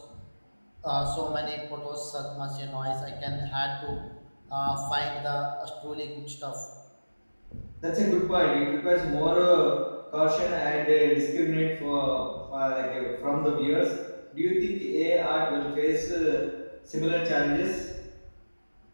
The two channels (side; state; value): both; inverted; correlation -1.00